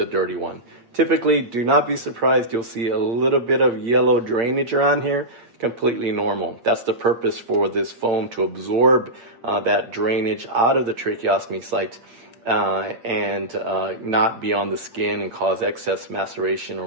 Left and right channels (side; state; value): left; late; 8.6 ms